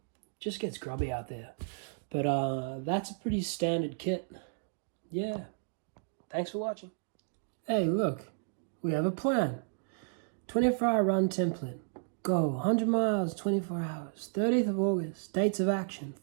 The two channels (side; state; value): left; silent; digital silence